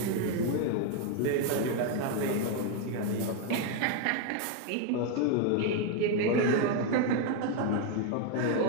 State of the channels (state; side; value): different; both; correlation 0.01